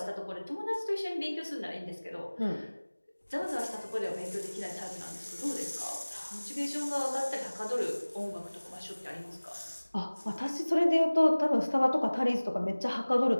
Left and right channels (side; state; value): both; inverted; correlation -1.00